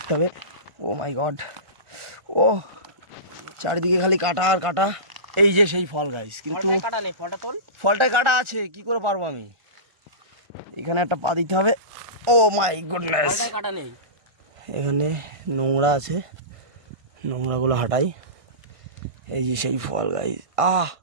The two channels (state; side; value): late; left; 1.3 ms